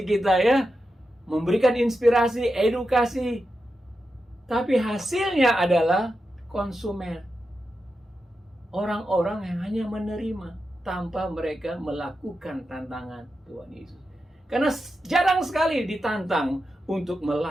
kita, ya, memberikan inspirasi, edukasi. Tapi hasilnya adalah konsumen. Orang-orang yang hanya menerima tanpa mereka melakukan tantangan Tuhan Yesus. Karena jarang sekali ditantang untuk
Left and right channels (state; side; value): normal; both; correlation 0.89